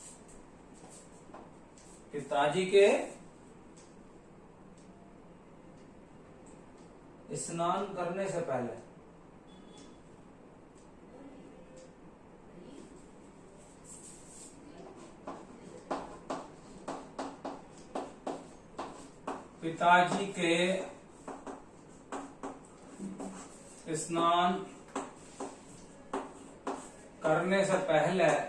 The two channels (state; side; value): identical; both; correlation 1.00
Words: पिताजी के स्नान करने से पहले पिताजी के स्नान करने से पहले